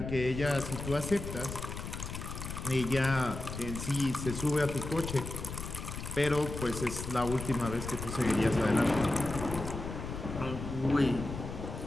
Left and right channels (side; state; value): left; noise; rumble, 7 dB below the sound